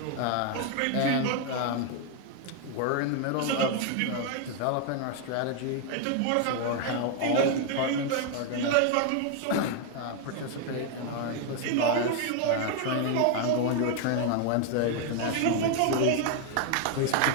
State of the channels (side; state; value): both; different; correlation 0.01